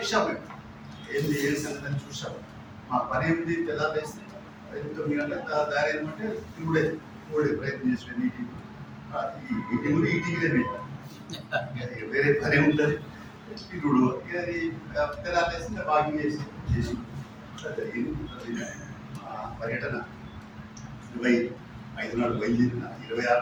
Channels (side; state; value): both; identical; correlation 1.00